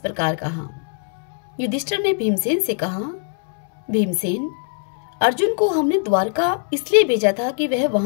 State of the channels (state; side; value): silent; right; 64 dB below the other